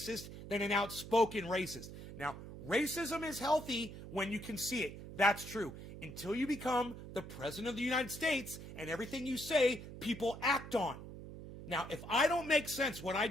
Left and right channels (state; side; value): noise; right; hum, 12 dB below the sound